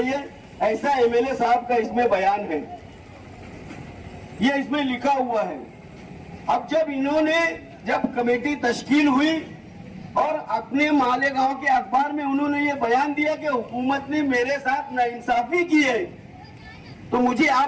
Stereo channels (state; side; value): identical; both; correlation 1.00